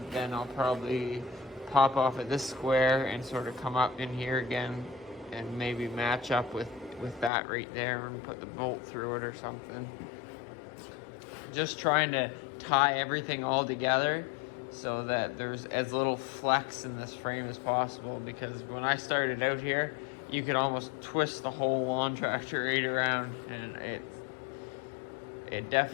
then I'll probably pop off at this square and sort of come up in here again and maybe match up with that right there and put the bolt through it or something. Just trying to tie everything all together so that there's as little flex in this frame as possible, because when I started out here, you could almost twist the whole lawn tractor right around, and it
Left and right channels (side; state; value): right; drops out; at 7.3 s